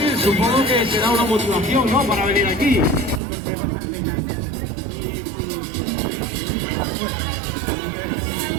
supongo que será una motivación, ¿no?, para venir aquí.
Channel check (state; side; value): drops out; left; at 3.2 s